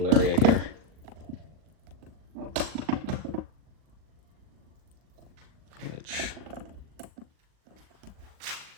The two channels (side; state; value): left; late; 39 ms